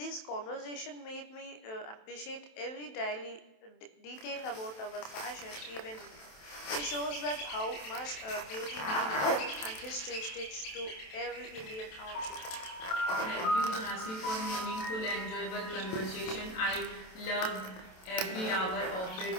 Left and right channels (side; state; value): right; late; 27 ms